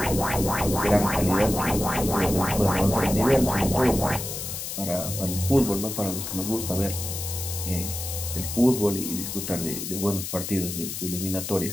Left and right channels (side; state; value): left; noise; hiss, 6 dB below the sound